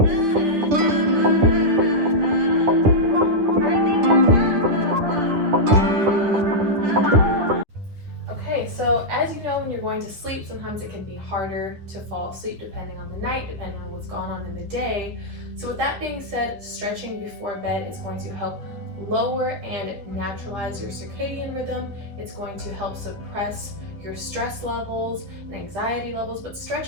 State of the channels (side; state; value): left; late; 10 ms